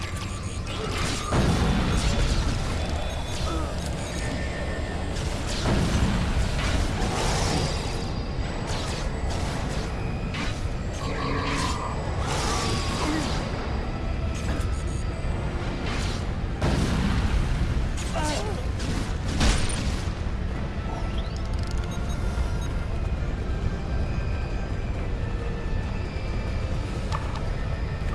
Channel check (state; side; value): identical; both; correlation 1.00